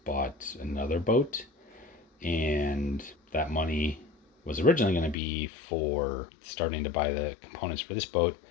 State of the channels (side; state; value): right; drops out; at 5.2 s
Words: bought another boat and that money was originally going to be for starting to buy the components for this boat.